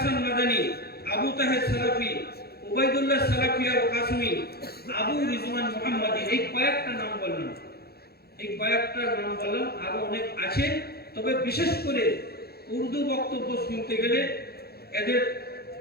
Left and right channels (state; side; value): late; right; 0.46 ms